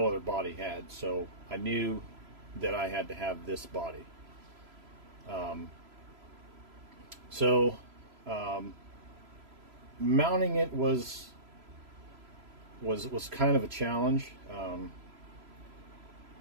other body had. So I knew that I had to have this body. Mounting it was kind of a challenge.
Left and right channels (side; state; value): left; late; 3.0 ms